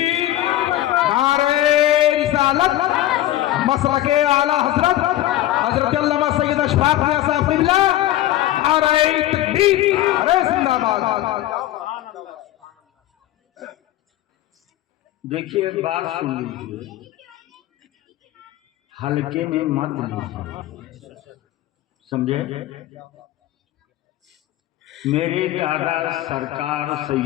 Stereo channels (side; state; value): right; quieter; 14.6 dB